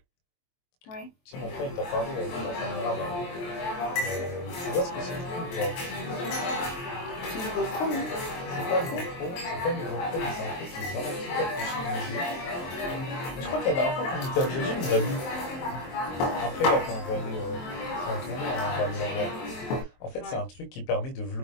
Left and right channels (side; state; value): right; late; 23 ms